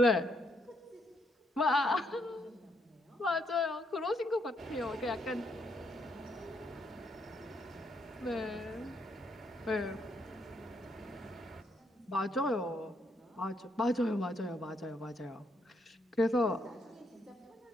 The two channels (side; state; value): both; normal; correlation 0.75